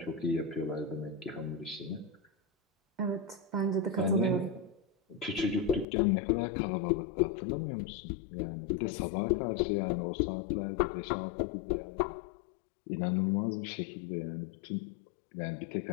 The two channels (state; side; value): drops out; right; at 5.9 s